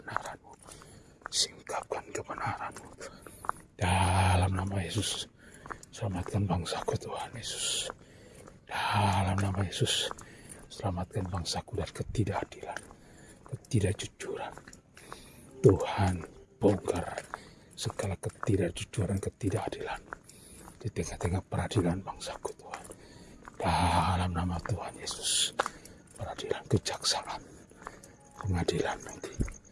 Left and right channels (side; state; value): both; identical; correlation 1.00